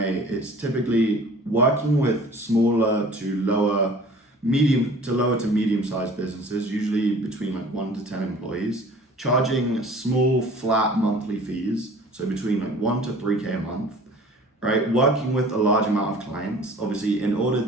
it's typically working with smaller to lower to medium-sized businesses, usually between like 1 to 10 employees, charging small flat monthly fees, so between like 1 to 3K a month, right? Working with a large amount of clients. Obviously, in order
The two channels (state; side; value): normal; both; correlation 0.47